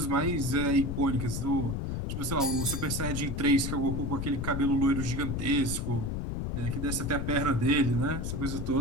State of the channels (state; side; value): noise; left; rumble, 2 dB below the sound